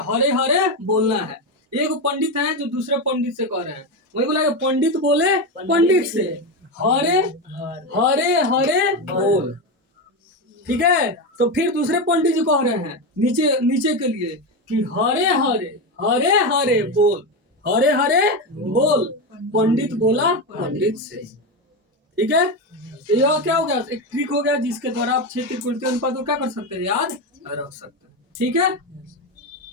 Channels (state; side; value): normal; both; correlation 0.14